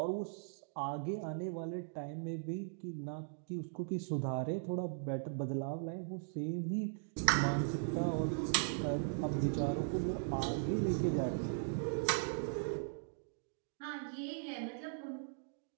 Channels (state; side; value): silent; left; digital silence